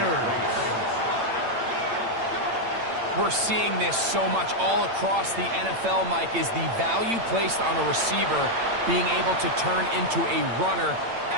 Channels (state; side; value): late; left; 8.8 ms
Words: we're seeing this so much all across the NFL, Mike, is the value placed on a receiver being able to turn into a runner